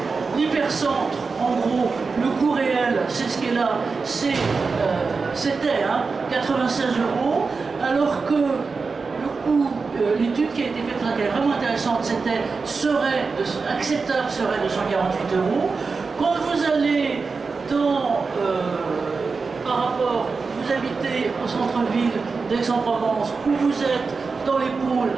l'hypercentre, en gros, le coût réel, c'est ce qui est là, c'était 96 €, alors que le coût, l'étude qui a été faite, qui est vraiment intéressante, acceptable serait de 148 €. Quand vous allez par rapport, vous habitez au centre-ville d'Aix-en-Provence, où vous êtes dans les pôles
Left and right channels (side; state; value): left; quieter; 4.6 dB